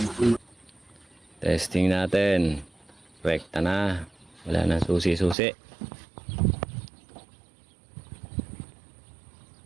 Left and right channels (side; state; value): left; drops out; at 5.4 s